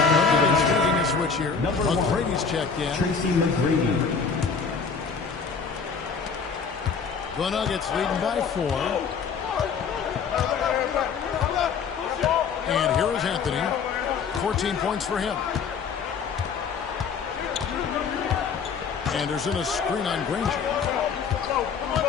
taking a switch here. McGrady's checked in. Tracy McGrady. The Nuggets leading by 4. And here is Anthony. 14 points for him. Anderson a screen on Granger.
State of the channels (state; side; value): quieter; right; 5.8 dB